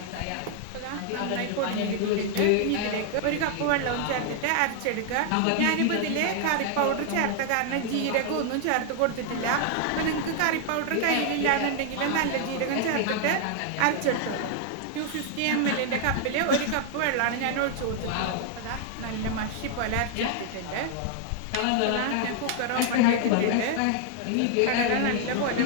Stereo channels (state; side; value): different; both; correlation 0.00